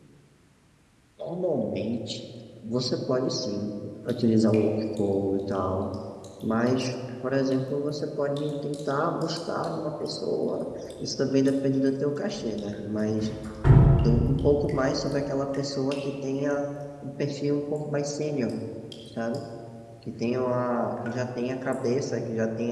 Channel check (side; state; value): both; identical; correlation 1.00